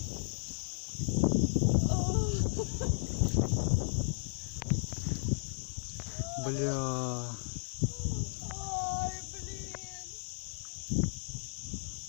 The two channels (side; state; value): right; silent; digital silence